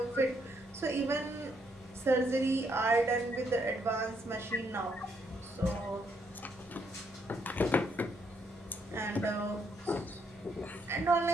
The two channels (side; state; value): both; normal; correlation 0.74